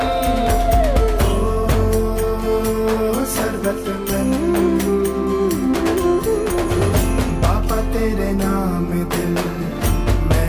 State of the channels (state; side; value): identical; both; correlation 1.00